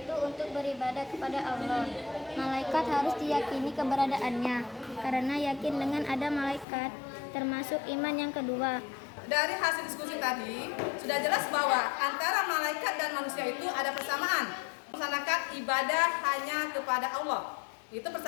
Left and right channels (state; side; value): drops out; right; at 6.7 s